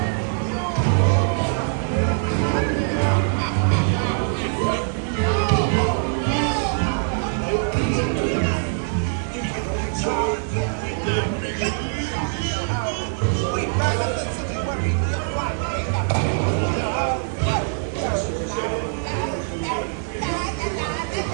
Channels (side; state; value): left; silent; 63 dB below the other